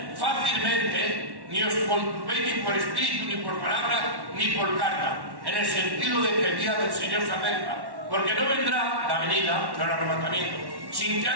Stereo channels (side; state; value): left; late; 1.1 ms